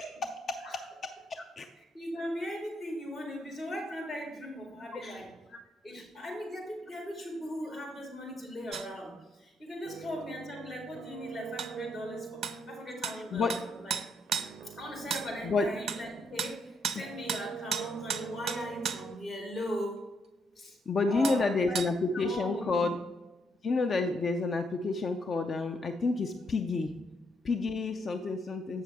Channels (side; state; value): both; normal; correlation 0.76